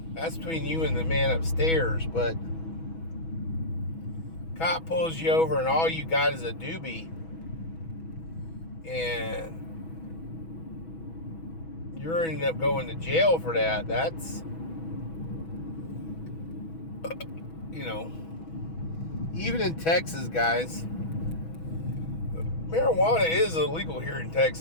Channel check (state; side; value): late; right; 6.1 ms